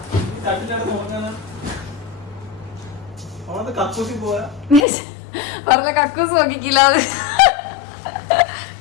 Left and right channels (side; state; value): right; drops out; at 4.9 s